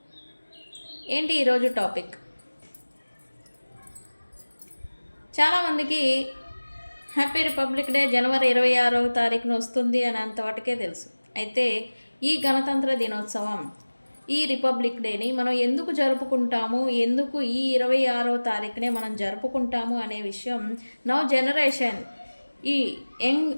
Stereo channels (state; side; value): inverted; both; correlation -1.00